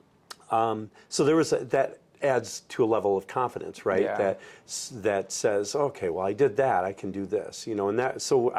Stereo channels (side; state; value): both; identical; correlation 1.00